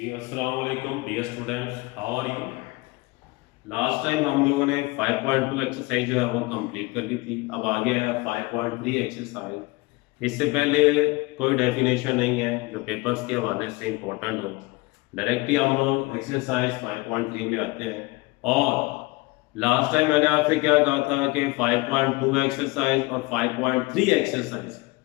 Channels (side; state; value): right; quieter; 23.9 dB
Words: अस्सलाम वालेकुम dear students, how are you. Last time हम लोगों ने 5.2 एक्सरसाइज जो है वो कंप्लीट कर ली थी। अब आगे है 5.3 एक्सरसाइज। इससे पहले कोई डेफिनेशन नहीं है जो पेपर्स के हवाले से इंपॉर्टेंट हो। डायरेक्टली हम लोग एक्सरसाइज 5.3 में आते हैं। और लास्ट टाइम मैंने आपसे क्या कहा था कि 5.2 एक्सरसाइज और 5.3 एक्सरसाइज